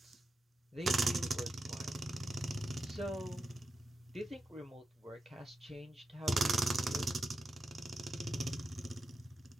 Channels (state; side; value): normal; both; correlation 0.89